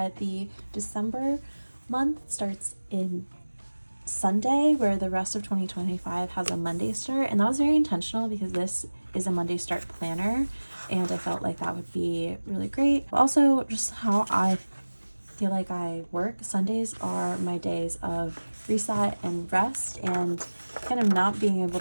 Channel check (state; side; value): inverted; both; correlation -1.00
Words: the December month starts in Sunday, where the rest of 2025 has a Monday start, and that was very intentional because this is a Monday start planner, and I felt like that would be really great. Also, just how I feel like I work, Sundays are my days of reset and rest, and kind of not being able